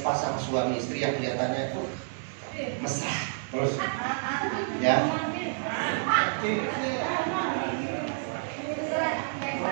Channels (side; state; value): left; silent; digital silence